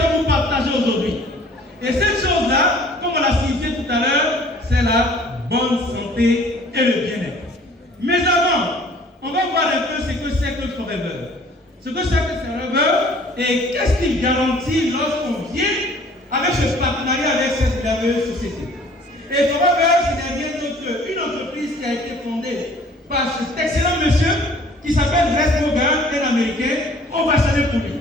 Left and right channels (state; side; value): normal; both; correlation 0.53